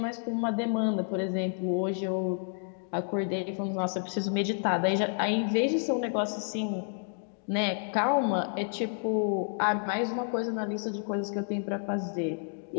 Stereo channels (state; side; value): silent; right; digital silence